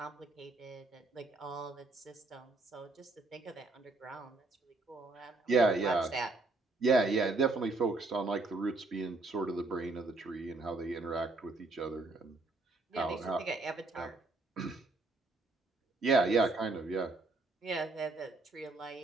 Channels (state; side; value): quieter; left; 3.3 dB